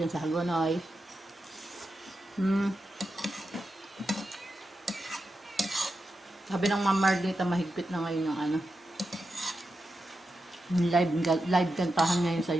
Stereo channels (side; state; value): both; normal; correlation 0.89